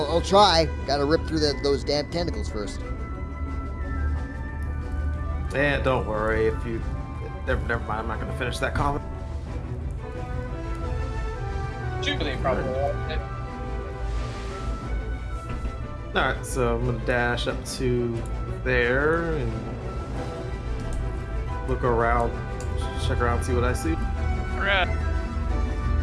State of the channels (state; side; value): identical; both; correlation 1.00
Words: I'll try. Gotta rip through those damn tentacles first. And don't worry if you. Never mind. I'm not gonna finish that comment. Jubilee probably won't. All right, so I'm gonna dash up to there and look around, check around, see what I see. Alright. As